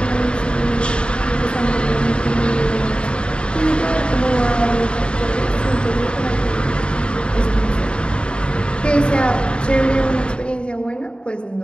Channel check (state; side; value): late; right; 0.054 ms